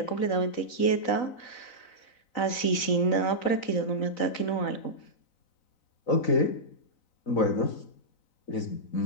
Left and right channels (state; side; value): late; right; 4.0 ms